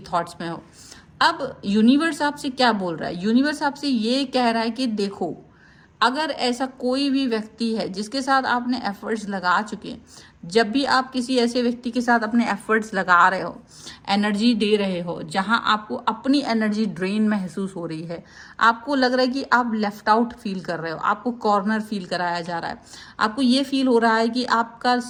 थॉट्स में हो। अब यूनिवर्स आपसे क्या बोल रहा है? यूनिवर्स आपसे ये कह रहा है कि देखो, अगर ऐसा कोई भी व्यक्ति है जिसके साथ आपने एफर्ट्स लगा चुके हैं, जब भी आप किसी ऐसे व्यक्ति के साथ अपने एफर्ट्स लगा रहे हो, एनर्जी दे रहे हो, जहां आपको अपनी एनर्जी ड्रेन महसूस हो रही है, आपको लग रहा है कि आप लेफ्ट आउट फील कर रहे हो, आपको कॉर्नर फील कराया जा रहा है, आपको ये फील हो रहा है कि आपका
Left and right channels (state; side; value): identical; both; correlation 1.00